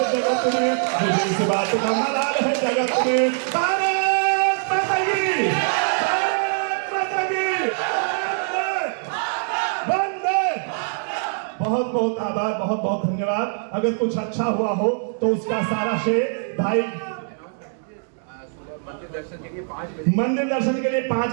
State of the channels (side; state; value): left; silent; 63 dB below the other